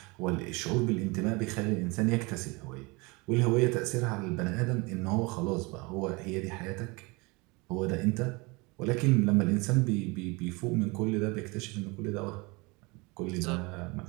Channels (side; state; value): left; quieter; 26.5 dB